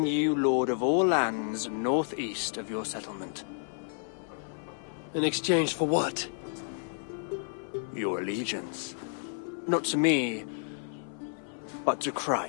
you lord of all lands northeast of your settlement. In exchange for what? Your allegiance. Not to me, but to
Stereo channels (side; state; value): right; silent; 57 dB below the other